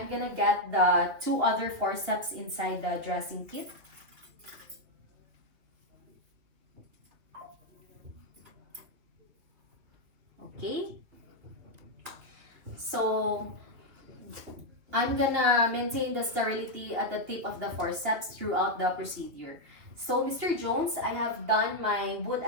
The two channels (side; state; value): left; late; 3.1 ms